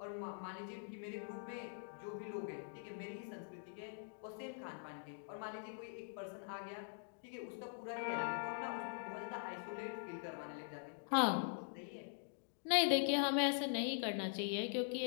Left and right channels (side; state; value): right; silent; digital silence